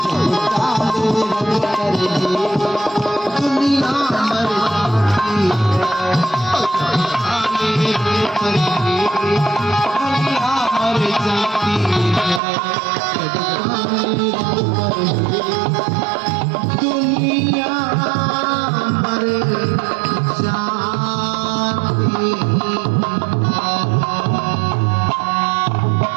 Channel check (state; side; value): drops out; left; at 12.4 s